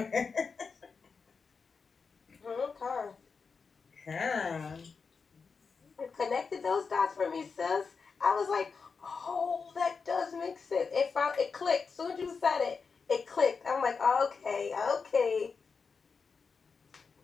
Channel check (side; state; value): right; quieter; 5.2 dB